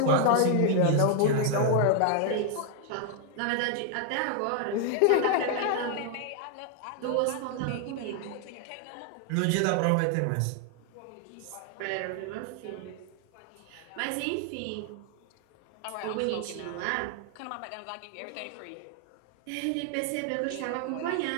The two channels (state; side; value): different; both; correlation 0.00